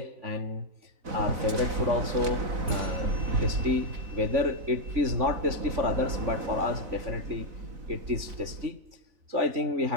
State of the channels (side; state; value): left; late; 4.0 ms